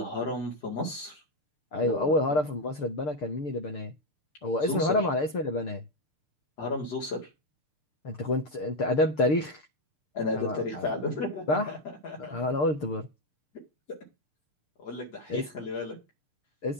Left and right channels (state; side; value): late; right; 6.7 ms